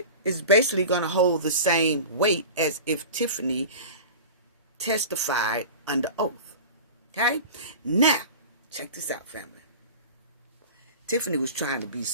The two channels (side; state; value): both; inverted; correlation -0.34